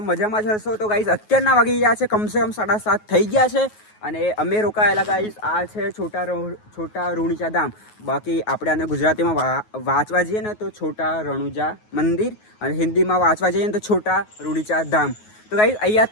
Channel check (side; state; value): right; late; 9.4 ms